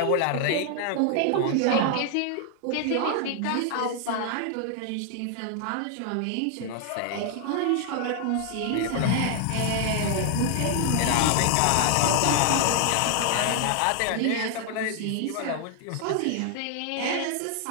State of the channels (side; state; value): both; different; correlation 0.00